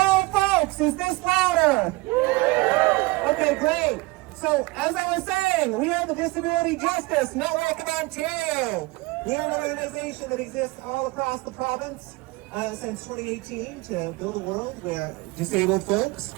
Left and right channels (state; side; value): quieter; left; 23.1 dB